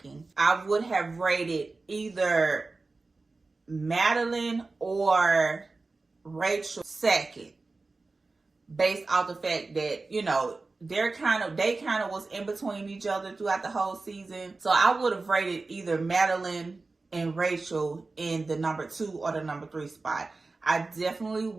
I would have rated either Madalyn or Rachel second, based off the fact that they kind of was in between each other throughout the whole season. So I would have rated either Madalyn and Rachel in the number 2 or the number 3 spot. I definitely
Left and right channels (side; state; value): left; quieter; 3.6 dB